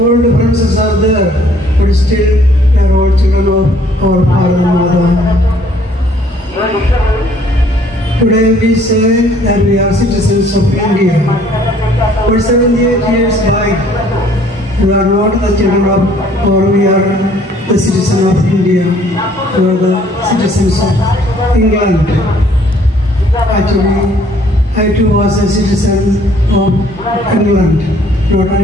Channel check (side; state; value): both; normal; correlation 0.60